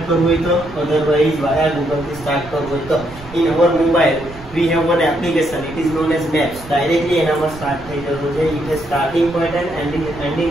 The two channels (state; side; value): noise; right; rumble, 18 dB below the sound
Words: કરવું હોય તો, otherwise via Google થી start કરવું હોય તો. In our mobile, we have one application. It is known as Maps. Directly એનામાં start થઈ જતું છે. It has starting point and